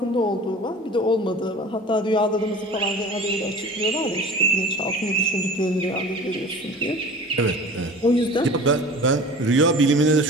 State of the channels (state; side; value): normal; both; correlation 0.40